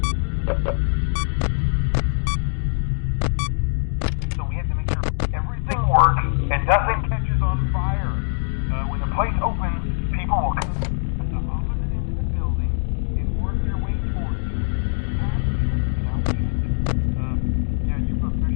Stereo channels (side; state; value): right; silent; 64 dB below the other